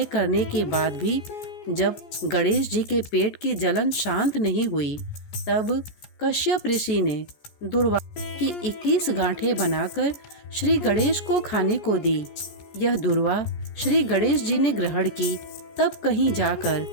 करने के बाद भी जब गणेश जी के पेट की जलन शांत नहीं हुई, तब कश्यप ऋषि ने दूर्वा की 21 गांठें बनाकर श्री गणेश को खाने को दी। यह दूर्वा श्री गणेश जी ने ग्रहण की, तब कहीं जाकर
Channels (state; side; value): late; right; 14 ms